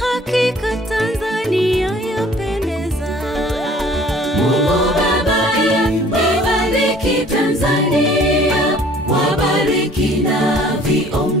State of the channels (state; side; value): normal; both; correlation 0.53